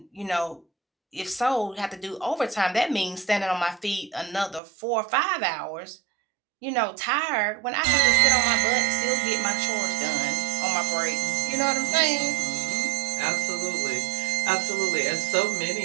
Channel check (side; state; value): left; drops out; at 4.6 s